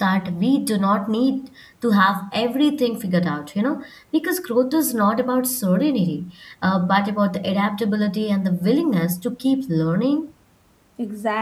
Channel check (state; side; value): identical; both; correlation 1.00